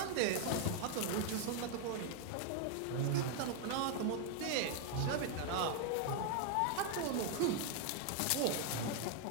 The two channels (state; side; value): different; both; correlation 0.00